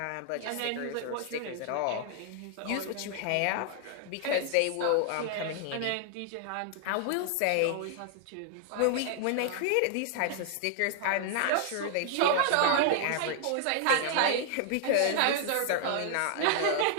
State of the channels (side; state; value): both; different; correlation 0.00